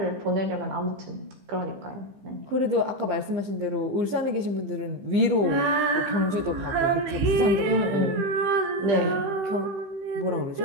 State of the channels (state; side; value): late; left; 15 ms